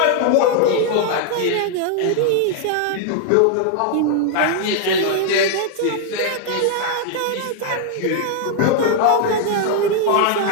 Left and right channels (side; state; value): both; different; correlation 0.00